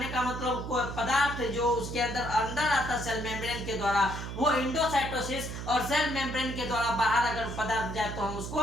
का मतलब कोई पदार्थ जो उसके अंदर आता सेल मेम्ब्रेन के द्वारा, वो इंडोसाइटोसिस, और सेल मेम्ब्रेन के द्वारा बाहर अगर पदार्थ जाए तो हम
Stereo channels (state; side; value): noise; right; hum, 7 dB below the sound